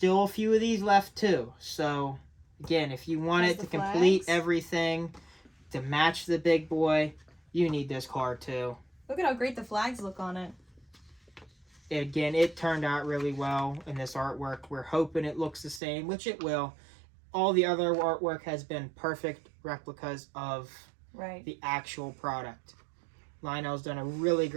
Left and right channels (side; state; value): left; drops out; at 15.8 s